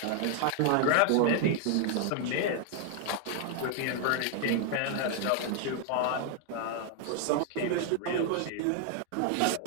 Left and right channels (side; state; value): both; different; correlation 0.00